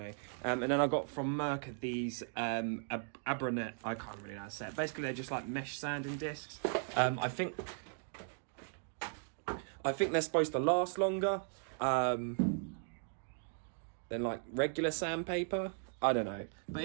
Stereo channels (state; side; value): silent; left; 53 dB below the other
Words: And then I got from Merc these Abranet, I can't really know how to say it. Basically they're just like mesh sanding discs. I think they're supposed to last longer than like regular sandpaper. I don't know, but